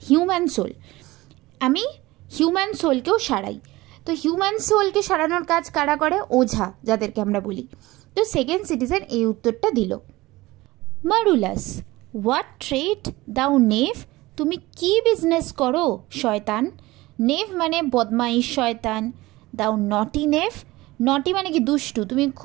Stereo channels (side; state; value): left; quieter; 19.5 dB